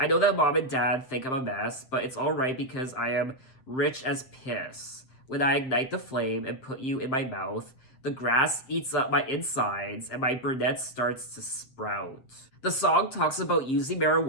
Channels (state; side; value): late; right; 7.7 ms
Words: know that mom and dad think I'm a mess, but it's alright because I am rich as piss. When I ignite the flame and put you in my mouth, the grass eats up my insides and my brunette starts to sprout. The song talks about using